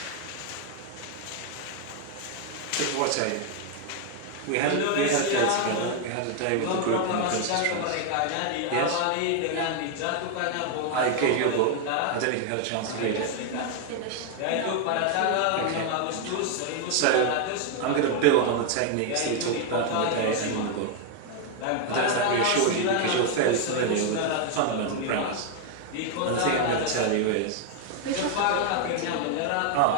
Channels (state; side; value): different; both; correlation 0.01